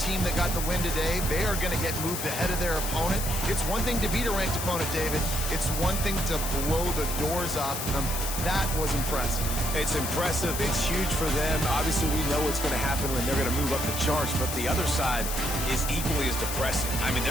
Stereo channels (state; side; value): noise; left; hiss, 4 dB below the sound